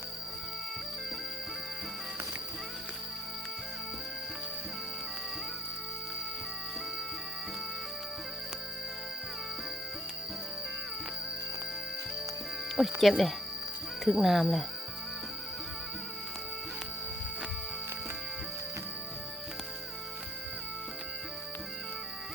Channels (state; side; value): normal; both; correlation 0.62